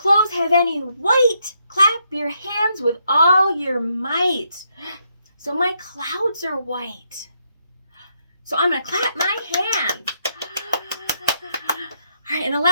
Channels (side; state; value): both; inverted; correlation -0.77